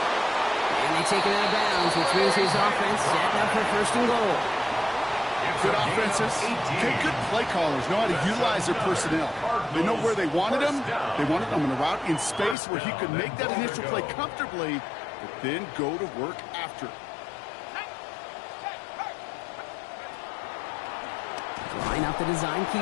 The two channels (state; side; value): drops out; right; at 12.6 s